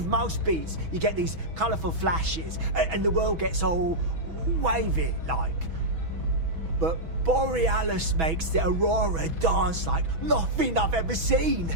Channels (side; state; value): left; late; 6.1 ms